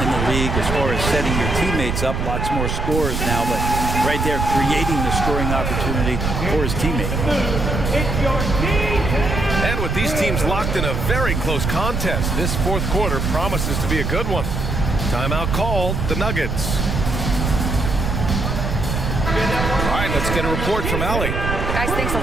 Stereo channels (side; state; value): right; noise; rumble, 1 dB below the sound